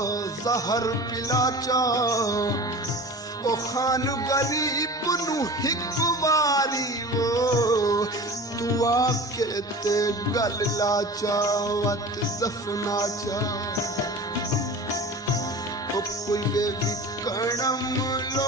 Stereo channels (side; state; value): both; normal; correlation 0.36